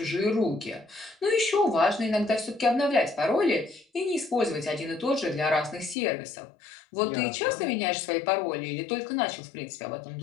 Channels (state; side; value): drops out; right; at 6.0 s